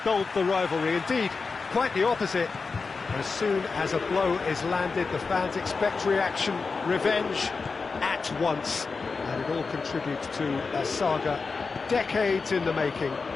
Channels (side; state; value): right; quieter; 4.5 dB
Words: dulled the rivalry. Indeed, quite the opposite. As soon as a blow is landed, the fans expect reaction, revenge, at once. And it all contributes to a saga, decades in the making,